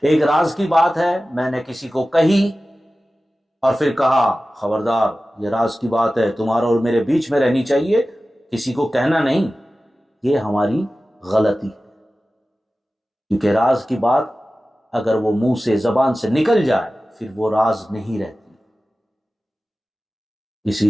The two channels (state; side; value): normal; both; correlation 0.95